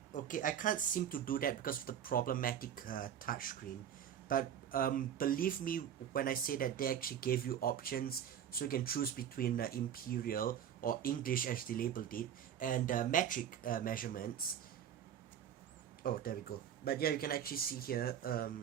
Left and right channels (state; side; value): quieter; left; 9.3 dB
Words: Okay, I can't seem to do that because of the problematic touchscreen. But believe me when I say that they actually gave you options, so you can choose between imperial or English as they labeled it, and metric measurements. Oh, there we go. But yeah, you can actually see here,